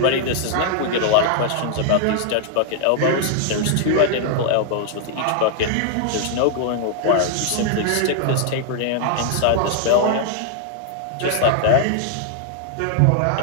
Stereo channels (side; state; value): both; different; correlation 0.00